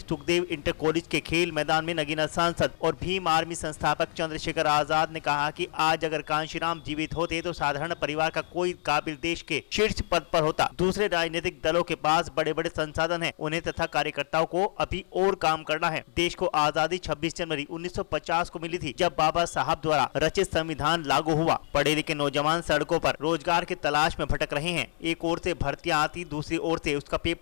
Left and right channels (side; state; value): right; silent; 60 dB below the other